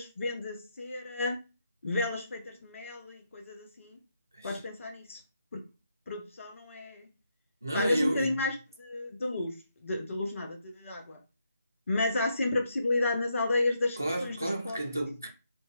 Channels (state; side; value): inverted; both; correlation -0.80